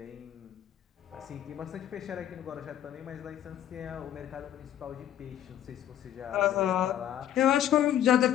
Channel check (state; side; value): quieter; right; 11.2 dB